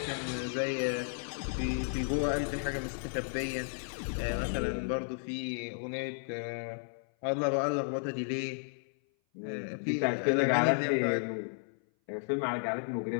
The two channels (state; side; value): silent; right; 56 dB below the other